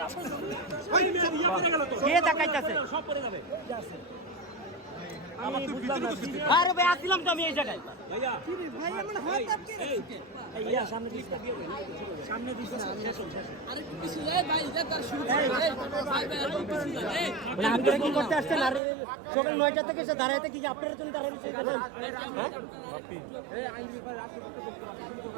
কে দেখাইতেছে? সব পড়ে যাবে। আমি বুঝলাম না। আরে ভাই আসছিলাম তো আমি এই জায়গায়। ভাইয়া ভাই আমার হাত আটকে রেখেছে। এই সামনে দিস না, সামনে দিস না। আরে কিছু যায় ভাই, যা তার শুরু করে। মানে আপনারা কি করতে আসছেন? আর সকাল 9টা থেকে এসে দাঁড়াইতে কি আপনারা তুমি দাঁড়াইতে এখানে?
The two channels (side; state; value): left; drops out; at 18.8 s